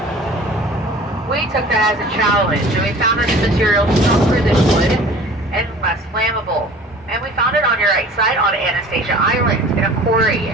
We took that as a challenge, and we found that the material stronger than wood and less flammable. And we found it on your right side on Anastasia Island in a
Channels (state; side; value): normal; both; correlation 0.45